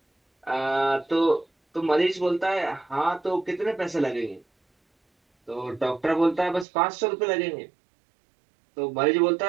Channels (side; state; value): left; drops out; at 6.7 s